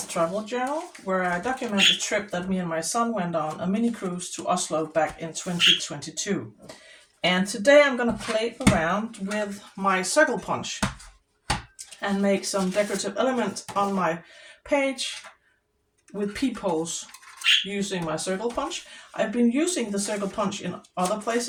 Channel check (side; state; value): both; identical; correlation 1.00